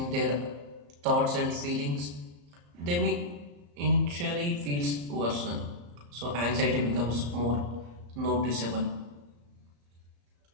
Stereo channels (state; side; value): late; left; 34 ms